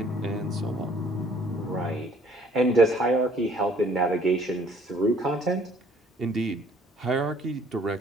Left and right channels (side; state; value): both; normal; correlation 0.59